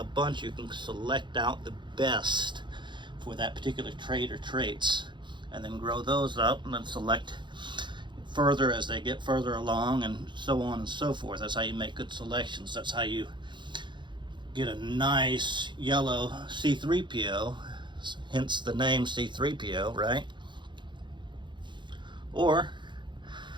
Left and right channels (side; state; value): left; late; 0.23 ms